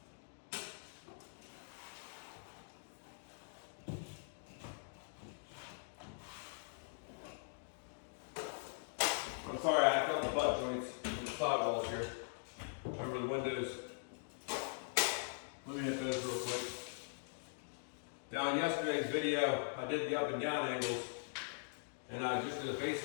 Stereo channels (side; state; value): right; silent; digital silence